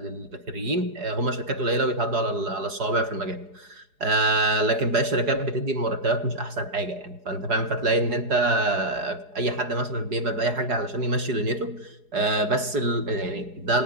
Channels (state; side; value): late; left; 4.8 ms